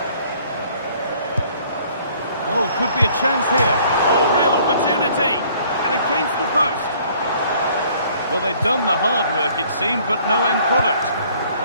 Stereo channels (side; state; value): both; inverted; correlation -0.58